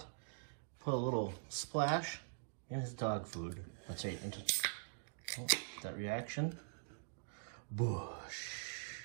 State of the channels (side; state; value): left; silent; digital silence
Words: Put a little splash in his dog food. That's right, that reaction. Busch.